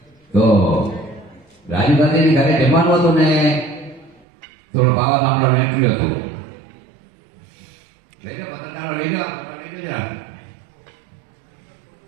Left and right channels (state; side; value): drops out; left; at 4.2 s